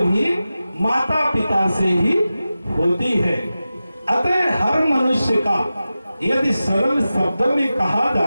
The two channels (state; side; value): inverted; both; correlation -0.94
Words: माता पिता से ही होती है। अतः हर मनुष्य का, यदि सरल शब्दों में कहा